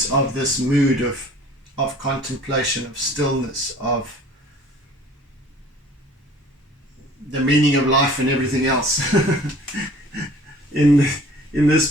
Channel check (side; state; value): both; normal; correlation 0.50